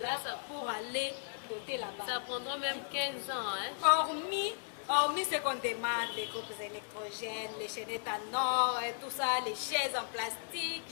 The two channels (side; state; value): right; silent; digital silence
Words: pour aller doter là-bas? Ça prendra même 15 ans. Hein? Hormis ce qu'on demande, les groupes électrogènes, les chaînettes en or, et tout ça, les chaises en plastique,